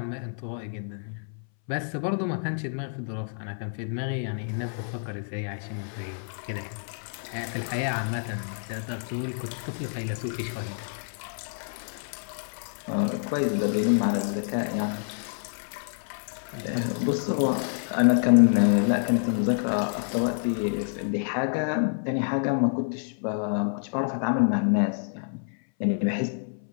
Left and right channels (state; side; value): silent; right; 59 dB below the other